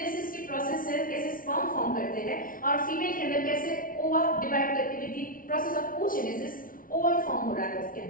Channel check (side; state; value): right; late; 0.40 ms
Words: की प्रोसेस से कैसे स्पर्म फॉर्म करते हैं, और फीमेल के अंदर कैसे ओवा डिवाइड करके with the process of oogenesis ovum form हो रहा है उसके